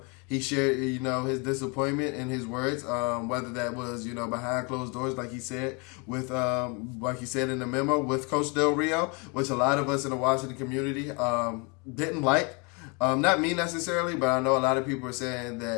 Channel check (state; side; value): quieter; right; 32.0 dB